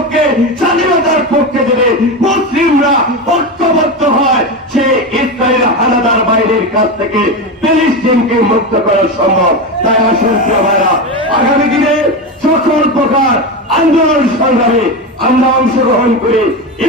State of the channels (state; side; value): normal; both; correlation 0.18